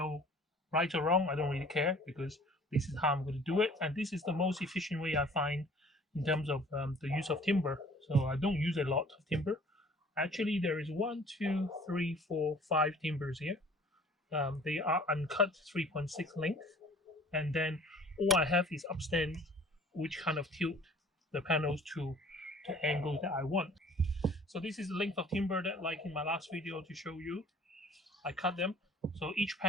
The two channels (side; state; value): both; normal; correlation 0.51